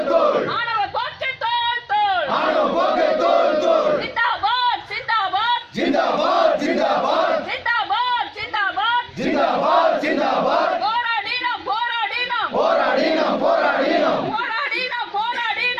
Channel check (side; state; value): both; identical; correlation 1.00